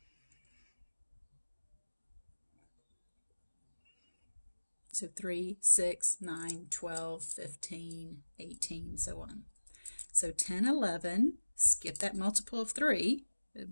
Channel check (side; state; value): both; inverted; correlation -1.00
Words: So 3, 6, 9, 12, 15, 18, so on. So 10, 11, skip that multiple of 3,